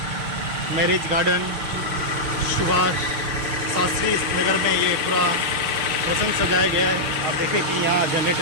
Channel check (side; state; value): left; late; 6.4 ms